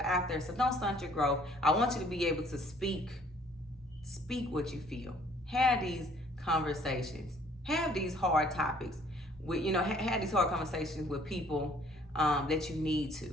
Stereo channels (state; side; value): normal; both; correlation 0.59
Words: out there. So don't stunt your growth. I want you to be able to speak what you feel. Have these conversations. Have these hard topics. Have these hard conversations with people that you need